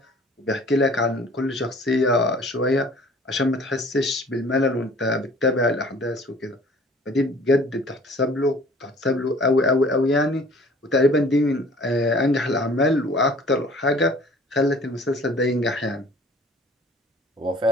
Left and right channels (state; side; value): normal; both; correlation 0.51